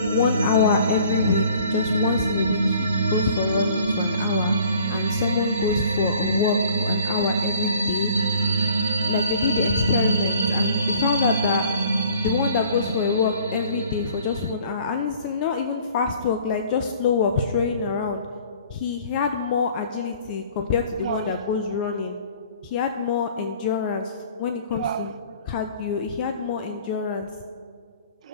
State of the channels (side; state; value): both; inverted; correlation -0.53